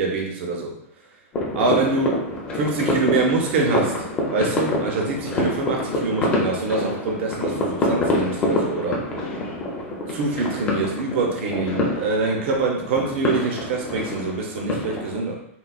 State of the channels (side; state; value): both; normal; correlation -0.03